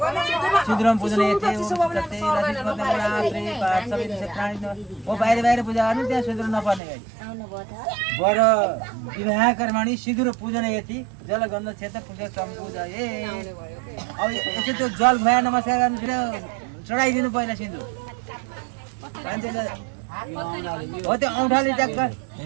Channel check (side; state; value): left; drops out; at 6.8 s